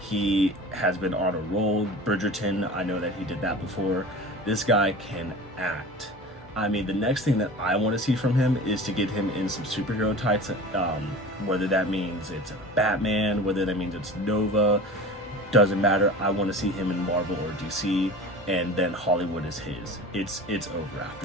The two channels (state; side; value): normal; both; correlation 0.37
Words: has been on a roll. Bridgerton, I know that he did that before. This guy can act. I mean, the next thing that I want to see from him is to get him in some superhero tights, whether that means it's Batman, whether that means it's Nova, doesn't matter. I want to see him in Marvel or DC, and then Hollywood is his. It's over